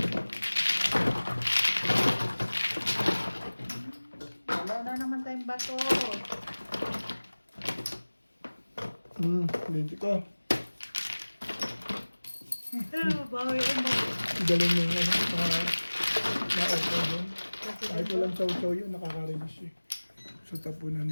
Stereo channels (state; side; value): inverted; both; correlation -1.00